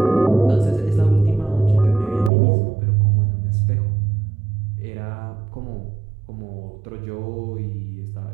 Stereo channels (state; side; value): drops out; left; at 2.3 s